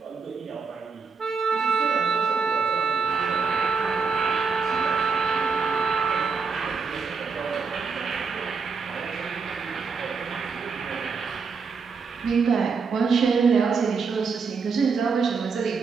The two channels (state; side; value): quieter; left; 5.2 dB